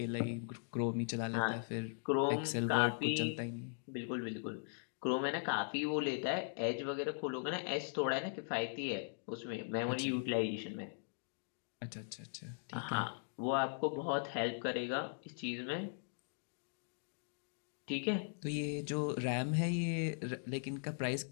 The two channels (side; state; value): right; silent; digital silence